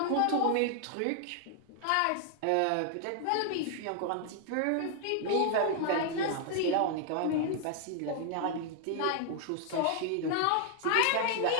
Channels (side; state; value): both; different; correlation 0.00